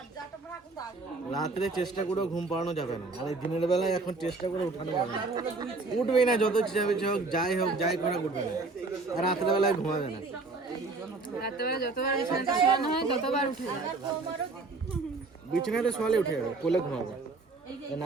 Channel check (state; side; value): quieter; left; 3.7 dB